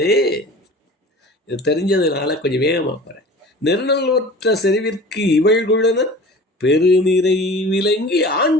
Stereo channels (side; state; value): both; normal; correlation 0.40